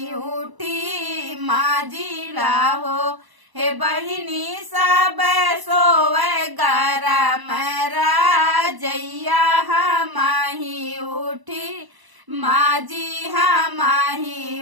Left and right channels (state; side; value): late; left; 1.0 ms